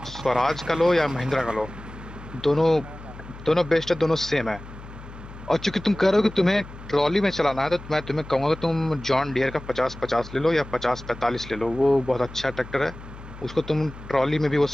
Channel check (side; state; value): left; noise; hum, 15 dB below the sound